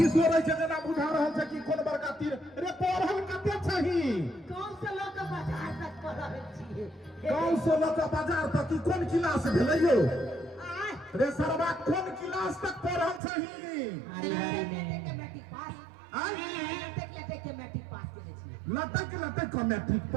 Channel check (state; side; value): drops out; left; at 13.2 s